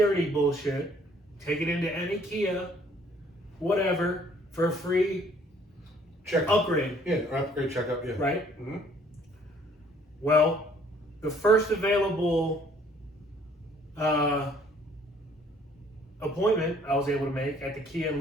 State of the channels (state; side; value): normal; both; correlation 0.60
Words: bullshit. Take it into any Kia, whatever, for a free Check. upgrade, Yeah, or upgrade checkup. Yeah. right? Mm-hmm. Well, the first available appointment I was able to make at the Kia in